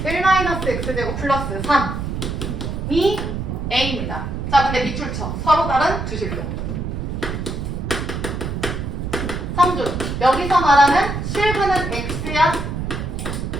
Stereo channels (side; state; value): right; noise; rumble, 4 dB below the sound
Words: 1-x제곱 플러스 3이 a입니다. 자, 근데 밑줄 쳐. 서로 다른 두 실로. 성준, 여기서 말하는 실근은 x야?